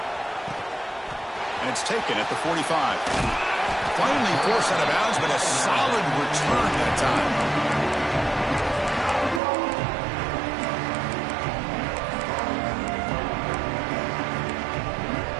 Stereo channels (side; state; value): left; drops out; at 9.4 s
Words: And it's taken at the 45. Finally forced out of bounds, but a solid return that time.